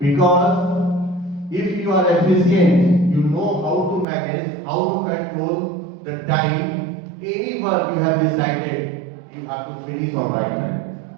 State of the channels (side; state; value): left; drops out; at 4.0 s